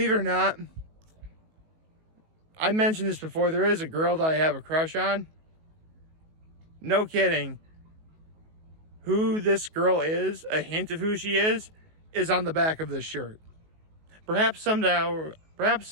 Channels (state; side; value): late; left; 19 ms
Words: it or not, I mentioned this before. There is a girl that I have a crush on. No kidding. Who this girl is, a hint of who she is on the back of this shirt. Perhaps